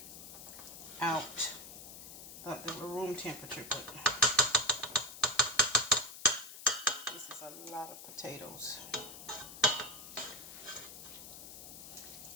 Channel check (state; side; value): noise; left; hiss, 13 dB below the sound